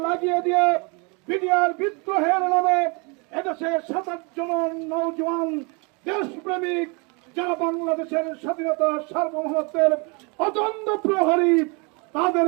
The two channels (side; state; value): left; quieter; 31.5 dB